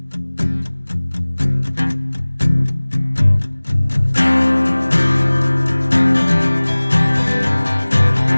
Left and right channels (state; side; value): inverted; both; correlation -1.00